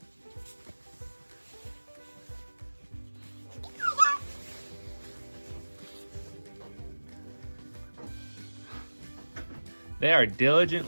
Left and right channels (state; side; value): inverted; both; correlation -1.00